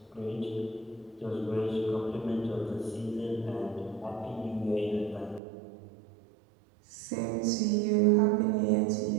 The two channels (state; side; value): drops out; left; at 5.4 s